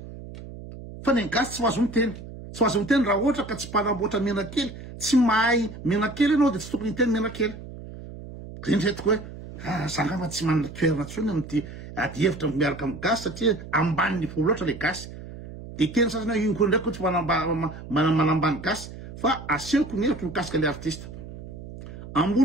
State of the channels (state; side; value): noise; right; hum, 13 dB below the sound